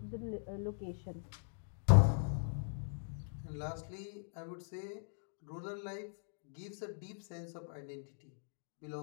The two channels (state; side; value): silent; right; digital silence